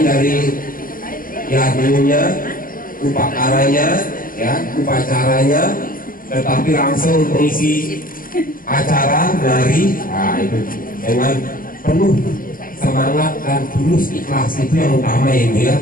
dari yagnya, upakaranya, ya, upacaranya, tetapi langsung mengisi acara nari, nah itu dengan penuh semangat dan tulus ikhlas, itu yang utama ya ibu ya.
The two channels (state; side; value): late; right; 0.41 ms